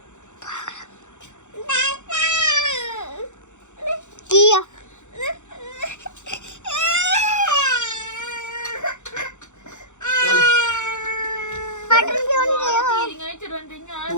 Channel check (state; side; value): late; right; 0.84 ms